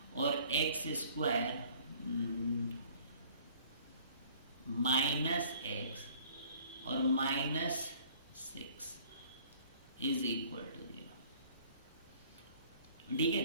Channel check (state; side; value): inverted; both; correlation -0.54